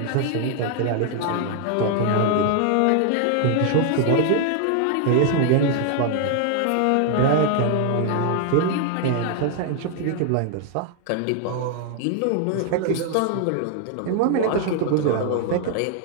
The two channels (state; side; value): different; both; correlation 0.00